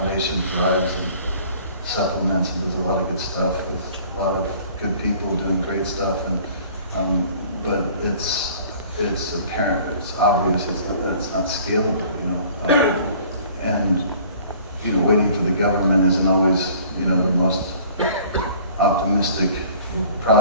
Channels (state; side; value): inverted; both; correlation -0.50